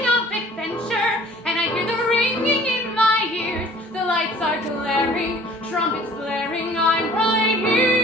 of adventure, and I hear the ringing in my ears. The lights are glaring, trumpets blaring, I'm right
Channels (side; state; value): both; normal; correlation 0.51